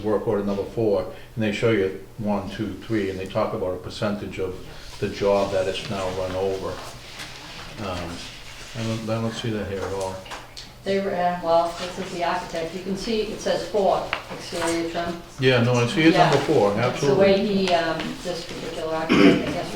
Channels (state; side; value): identical; both; correlation 1.00